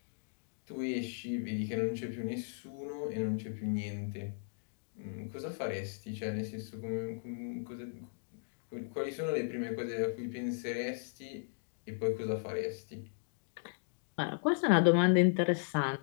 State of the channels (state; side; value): silent; right; digital silence